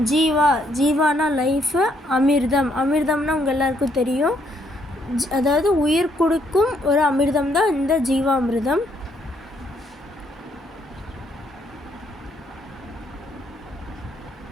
ஜீவானா லைஃபு, அமிர்தம்னா உங்கள் எல்லாருக்கும் தெரியும். அதாவது உயிர் கொடுக்கும் ஒரு அமிர்தம் தான் இந்த ஜீவாமிர்தம்.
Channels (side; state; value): both; normal; correlation 0.71